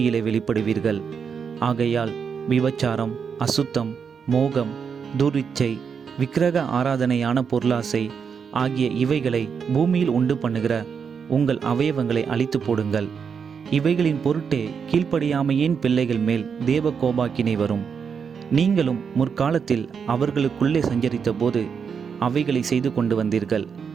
வெளிப்படுவீர்கள். ஆகையால் விபச்சாரம், அசுத்தம், மோகம், துரிச்சை, விக்கிரக ஆராதனையான பொருளாசை ஆகிய இவைகளை பூமியில் உண்டு பண்ணுகிற உங்கள் அவயவங்களை அழித்து போடுங்கள். இவைகளின் பொருட்டே கீழ்ப்படியாமையின் பிள்ளைகள் மேல் தேவ கோபாக்கினை வரும். நீங்களும் முற்காலத்தில் அவர்களுக்குள்ளே சஞ்சரித்த போது அவைகளை செய்து கொண்டு வந்தீர்கள்.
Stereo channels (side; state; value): left; quieter; 6.5 dB